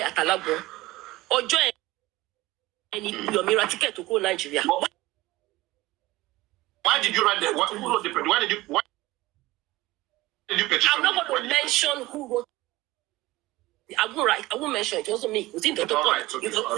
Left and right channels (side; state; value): left; quieter; 18.8 dB